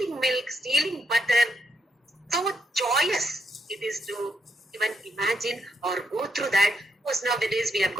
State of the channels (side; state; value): both; normal; correlation 0.77